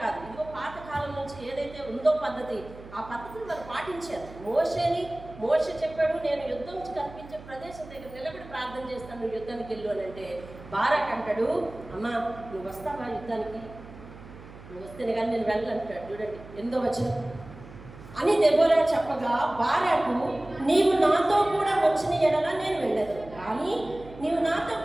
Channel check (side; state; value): right; noise; hum, 17 dB below the sound